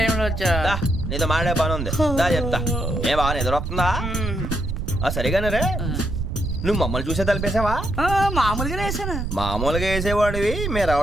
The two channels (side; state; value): right; noise; rumble, 4 dB below the sound